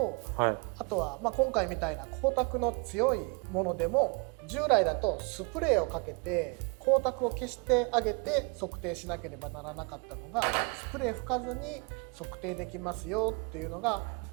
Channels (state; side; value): quieter; left; 32.6 dB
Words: はい、あとは今回みたいな光沢の強いものでも従来だとスプレーをかけて光沢を消してあげて測定しなければならなかったのがスプレー吹かずに測定できますよっていうのが